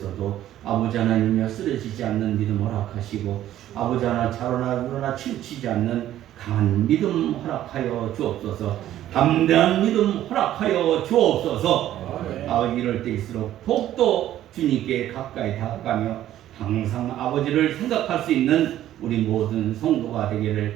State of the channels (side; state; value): left; quieter; 12.7 dB